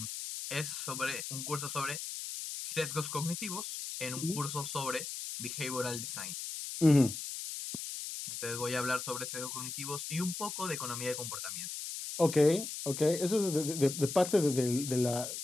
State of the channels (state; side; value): noise; left; hiss, 6 dB below the sound